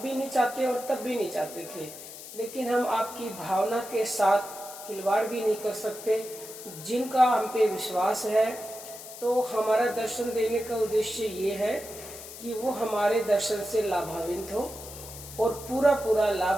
नहीं चाहते और तब भी नहीं चाहते थे, लेकिन हम आपकी भावना के साथ खिलवाड़ भी नहीं कर सकते। जिनका हम पे विश्वास है, तो हमारा दर्शन देने का उद्देश्य ये है कि वो हमारे दर्शन से लाभान्वित हो और पूरा पूरा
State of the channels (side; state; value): left; noise; hiss, 13 dB below the sound